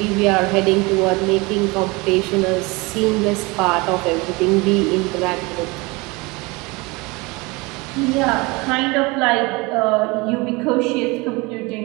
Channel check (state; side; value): quieter; left; 25.2 dB